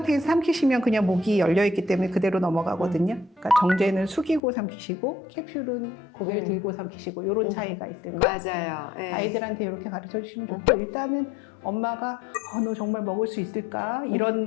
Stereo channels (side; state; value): right; drops out; at 4.4 s